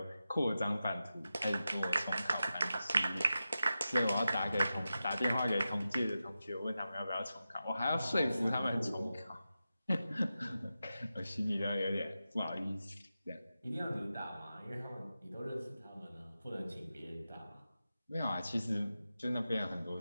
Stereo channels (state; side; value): inverted; both; correlation -0.92